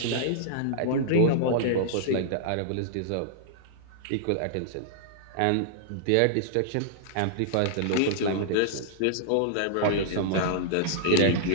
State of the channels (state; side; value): different; both; correlation -0.01